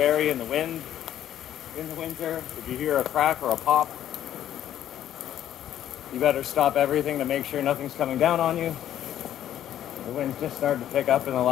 in the wind in the winter. If you hear a crack or a pop, you better stop everything to make sure nothing's coming down on you. The wind's just started to pick up in the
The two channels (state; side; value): quieter; right; 11.3 dB